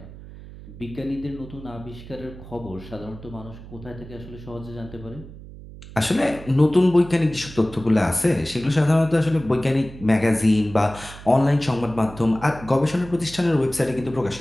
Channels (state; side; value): noise; right; hum, 16 dB below the sound